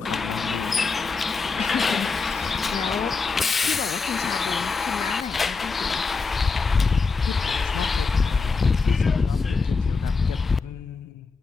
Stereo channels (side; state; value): right; quieter; 4.5 dB